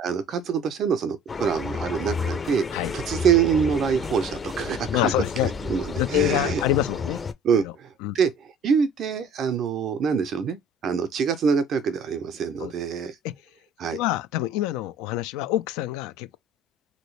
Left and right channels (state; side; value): normal; both; correlation 0.48